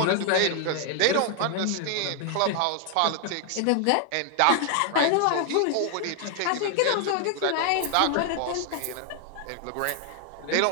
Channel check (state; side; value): different; both; correlation 0.00